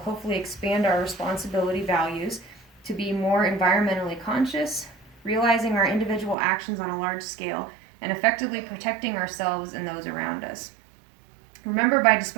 hopefully expand our responsibility values to be more environmentally conscious, realizing our individual actions on a large scale, and effectively protecting ourselves and those around us. Remember, by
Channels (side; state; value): left; drops out; at 6.4 s